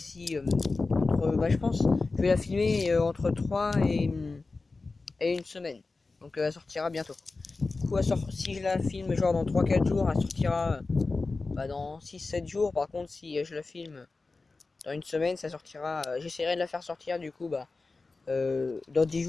je pense je vais la filmer entre 3 et une semaine. Donc elle sortira bientôt. Du coup si je la filme genre dans 3-4 jours, elle sortira dans 6-7 jours. Par contre si je la filme dans une semaine, ça sortira. J'essaierai de la faire sortir du coup dans 10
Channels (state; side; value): quieter; right; 3.7 dB